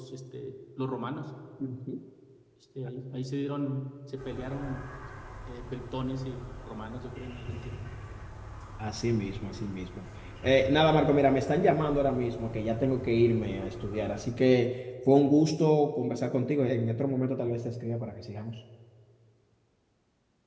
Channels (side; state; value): both; identical; correlation 1.00